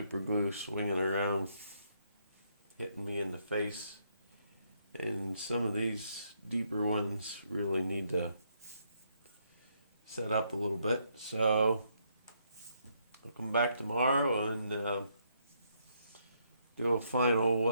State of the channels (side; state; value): both; inverted; correlation -0.74